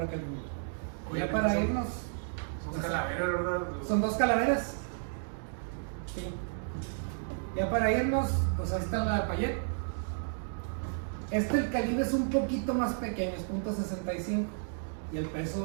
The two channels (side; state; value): left; silent; digital silence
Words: aquel mundo. Oye, Ya para irnos, son calaveras, ¿verdad? son 2 calaveras. Sí. Ya para irnos, pues ahí está la Payet. El calibre es un poquito más pequeño, es .65 y el